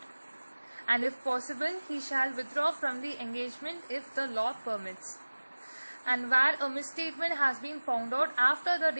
And if possible, he shall withdraw from the engagement if the law permits. And where a misstatement has been found out after the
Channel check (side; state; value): both; inverted; correlation -1.00